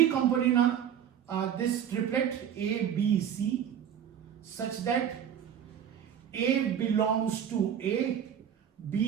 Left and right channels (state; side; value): quieter; left; 9.2 dB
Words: component this triplet A, B, C such that A belongs to A,